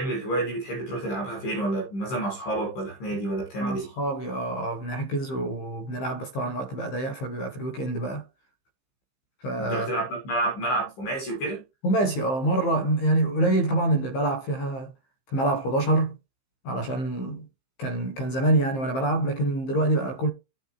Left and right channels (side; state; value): right; late; 15 ms